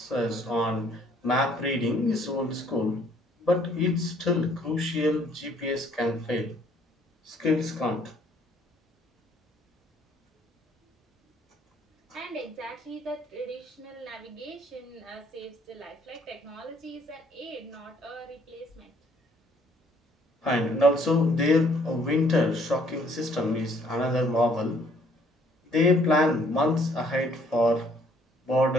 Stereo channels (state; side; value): normal; both; correlation 0.62